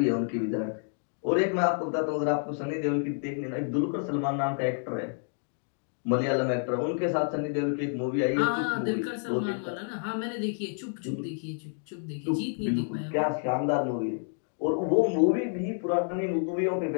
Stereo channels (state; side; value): silent; right; 59 dB below the other